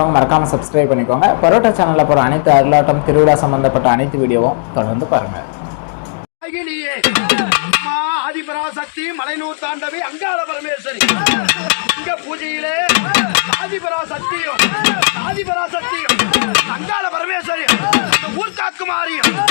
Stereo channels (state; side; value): silent; right; digital silence